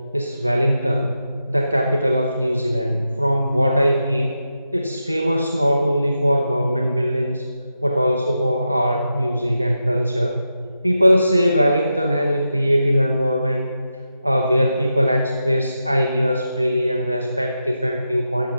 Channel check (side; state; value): both; inverted; correlation -0.88